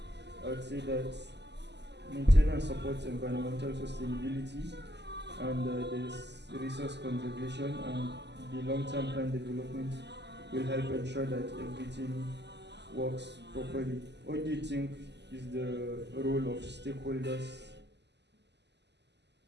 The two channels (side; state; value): left; late; 0.50 ms